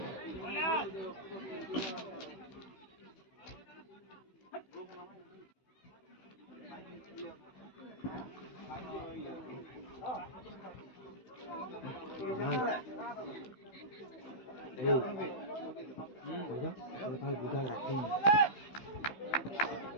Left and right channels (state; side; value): late; right; 16 ms